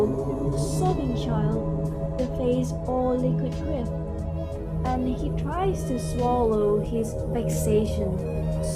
sobbing child, the face all liquid grief, and he tries to swallow his vexation,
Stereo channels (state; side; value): identical; both; correlation 1.00